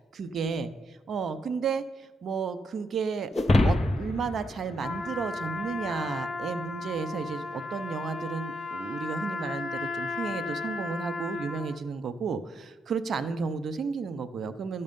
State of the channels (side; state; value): both; normal; correlation 0.79